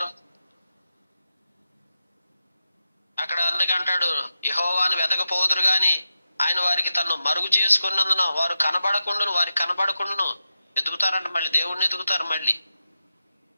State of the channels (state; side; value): inverted; both; correlation -0.89